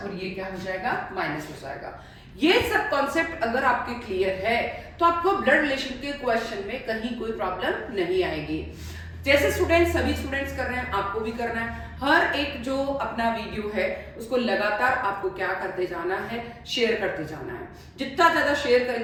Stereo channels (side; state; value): both; identical; correlation 1.00